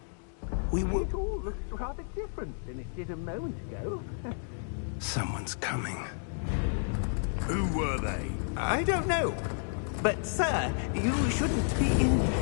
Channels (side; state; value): right; silent; digital silence